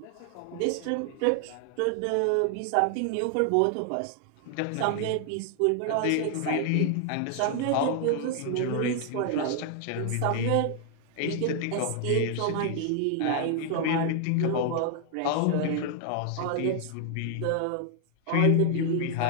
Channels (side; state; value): both; different; correlation 0.00